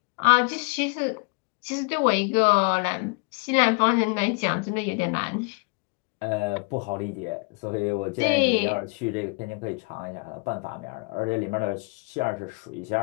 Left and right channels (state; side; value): quieter; right; 32.3 dB